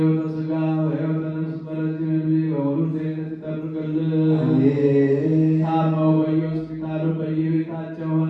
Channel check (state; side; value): identical; both; correlation 1.00